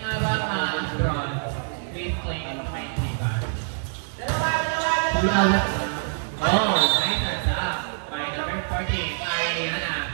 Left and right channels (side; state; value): left; silent; 59 dB below the other